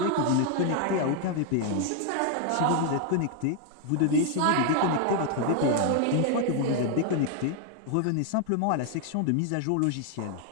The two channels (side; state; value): both; different; correlation 0.00